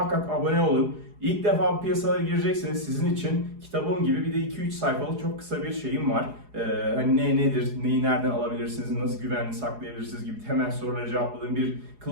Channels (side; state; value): left; late; 4.8 ms